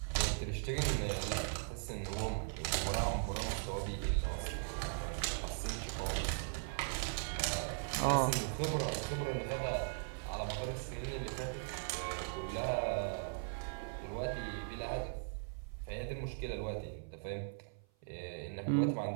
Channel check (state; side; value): silent; left; 52 dB below the other